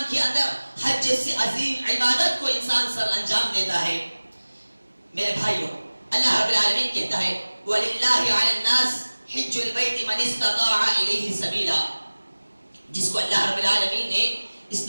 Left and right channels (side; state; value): both; inverted; correlation -1.00